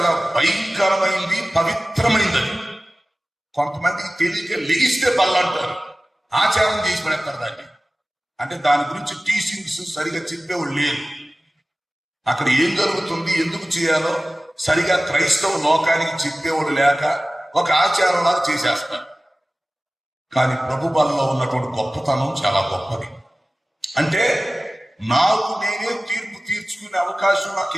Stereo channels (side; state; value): both; normal; correlation 0.97